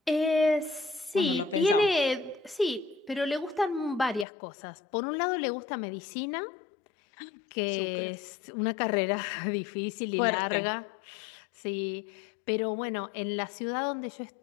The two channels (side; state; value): right; drops out; at 4.2 s